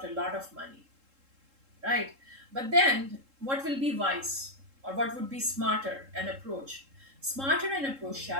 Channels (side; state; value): left; late; 3.7 ms